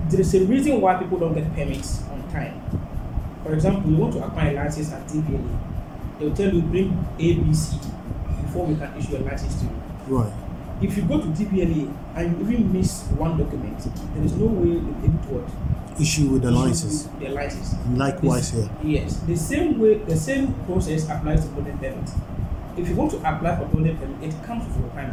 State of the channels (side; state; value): both; identical; correlation 1.00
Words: is a reason why people don't get permits on time. For example, you want to acquire a license at TPLA, they will tell you bring ABC before we can issue a license to you. Right. If you go to TPLA and you even miss one document, there is no way you'll be able to what? Issue with the license. The license. Likewise here. Yes, the same way, the same process applies to building permit. If you want to apply for building permit, it comes with